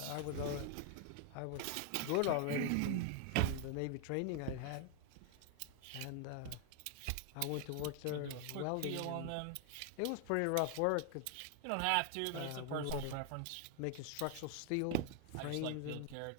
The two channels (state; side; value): different; both; correlation 0.00